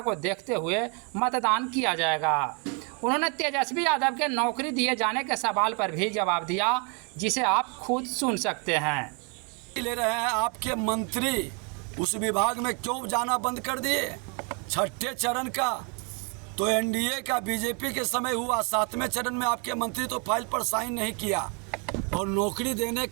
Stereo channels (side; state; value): left; quieter; 35.6 dB